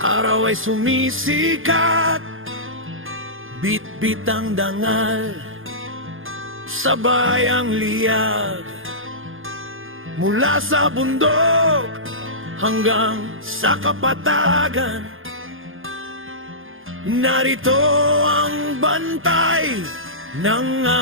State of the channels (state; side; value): late; left; 0.59 ms